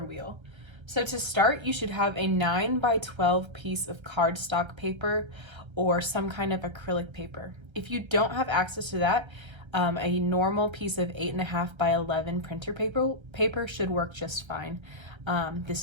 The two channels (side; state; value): left; late; 1.3 ms